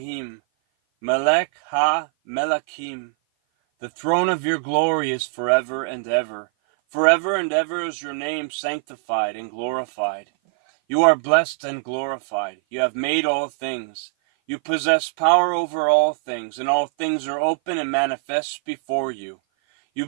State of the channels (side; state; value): left; silent; 56 dB below the other